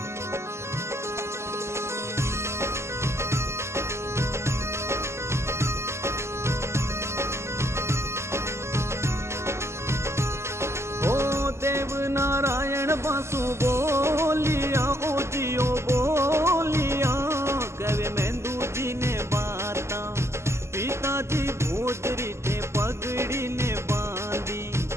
सु बोलिया ओ जियो बोलिया कवे मेंदू जी ने बाता पिताजी भोजरी थे पगड़ी ने बांधी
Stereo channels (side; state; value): left; late; 0.13 ms